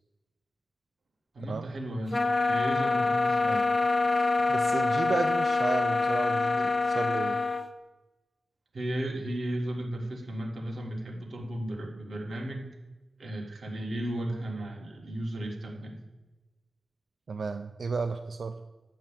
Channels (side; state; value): both; normal; correlation 0.94